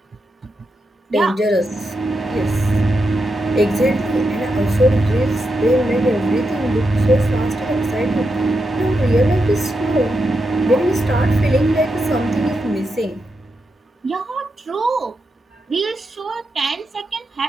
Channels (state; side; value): normal; both; correlation 0.85